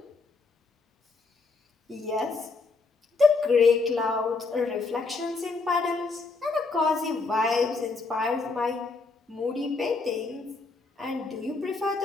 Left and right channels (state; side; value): quieter; right; 3.9 dB